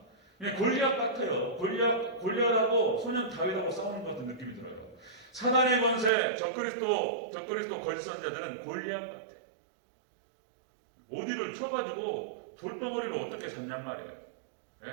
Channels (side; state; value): left; drops out; at 6.1 s